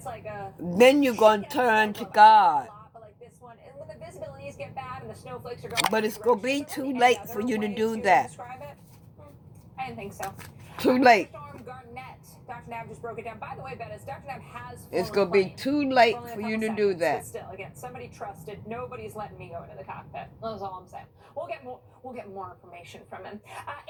like a... Then you're going to turn to God. Like this one. And when the visibilities get bad and the snowflakes are going... But it's going to be too late for you to do that. I didn't think so. Too late. Dr. Nav just broke it down. By the way, Bettis, Dr. Nav has... It's going to be too late for you to do that. But still, again, somebody trusted. Nobody's letting me go into the cockpit. That's all I'm saying. We'll get more information from him.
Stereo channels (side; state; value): both; identical; correlation 1.00